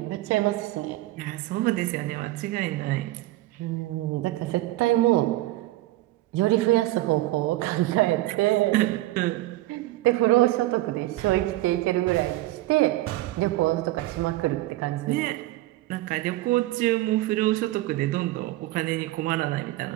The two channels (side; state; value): left; quieter; 17.3 dB